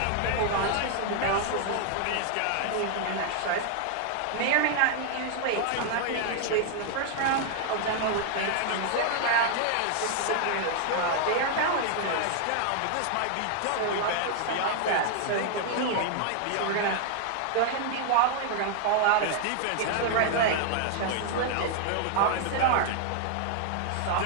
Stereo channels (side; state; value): both; different; correlation 0.00